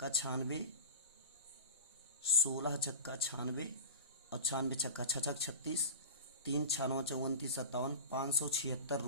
96, 16 छक्का 96 और 96 छक्का 6 36, 3 6 9 34 57, 576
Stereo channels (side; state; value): both; inverted; correlation -0.31